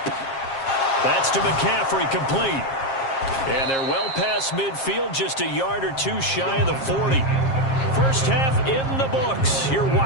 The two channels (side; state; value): right; late; 7.5 ms